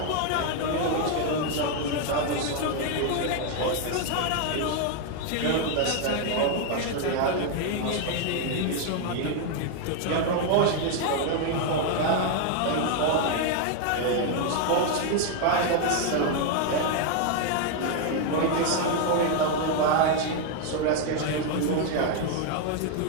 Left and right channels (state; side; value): different; both; correlation 0.01